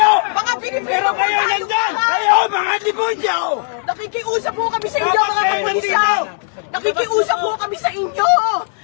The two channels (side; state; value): right; silent; 65 dB below the other